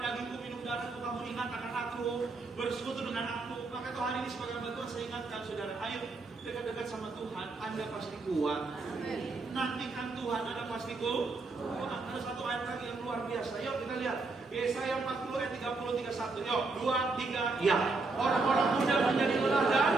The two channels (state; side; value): quieter; left; 3.7 dB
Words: minum darahku, kamu ingat akan aku, bersekutu dengan aku. Maka itu hari ini sebagai bantuan saya ingatkan saudara, ayo dekat-dekat sama Tuhan, Anda pasti kuat. Nantikan Tuhan, Anda pasti kuat. Ada satu ayat lagi yang luar biasa. Yuk kita lihat Yesaya 40 ayat 30, 31. Yuk 2, 3. Ya, orang-orang muda menjadi